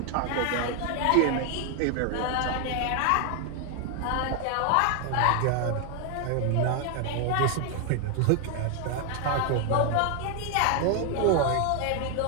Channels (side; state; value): both; different; correlation 0.00